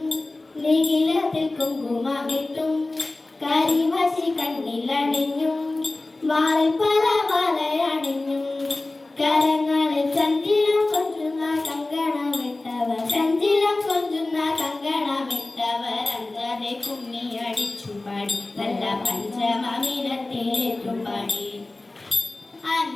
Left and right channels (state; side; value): quieter; right; 3.0 dB